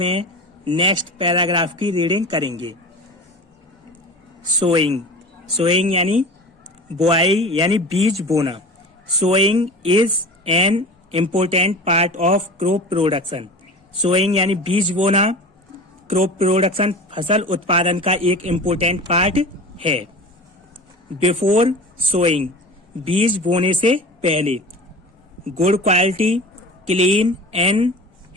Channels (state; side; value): normal; both; correlation 0.35